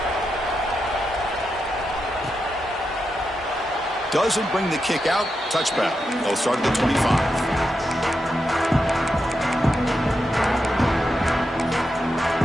Doesn't bring the kick out. Touchback. They'll start at the 25.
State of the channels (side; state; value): both; normal; correlation 0.87